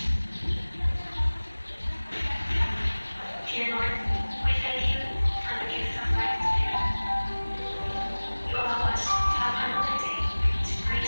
Dear Lord, we thank you for the gift of life today. You allow us to have another day to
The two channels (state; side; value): inverted; both; correlation -1.00